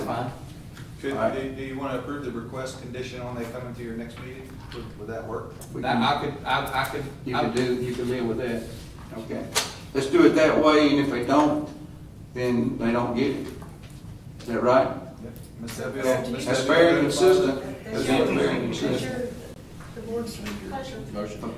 fine. Could, All right. do you want to approve the request condition on they coming to your next meeting? Would that work? We That, can- I could. You can live with that. Okay. Let's do it that way, and if they don't, then they don't get it. Is that right? Ms. Debbie, Ms. That's Debbie, fair and good? consistent. That's fair and consistent. The board's pleasure. Motion.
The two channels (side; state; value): both; identical; correlation 1.00